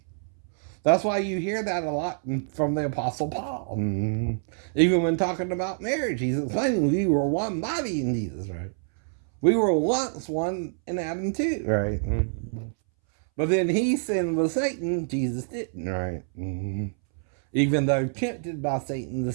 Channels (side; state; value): left; silent; 61 dB below the other